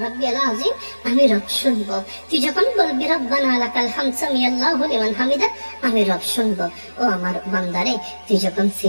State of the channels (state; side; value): inverted; both; correlation -1.00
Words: রাব্বিয়াল আযীম, আমি রব শুনবো। তুই যখন বলবি রব্বানা লাকাল হামদ সামিআল্লাহু লিমান হামিদা, আমি রব শুনবো। ও আমার বান্দারে তুই যখন